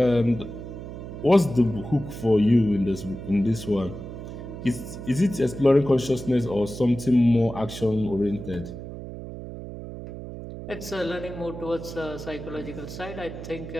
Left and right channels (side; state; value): right; noise; hum, 10 dB below the sound